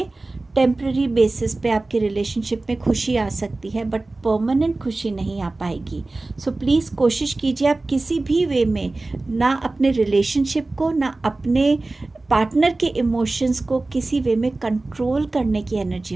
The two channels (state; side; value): quieter; left; 3.1 dB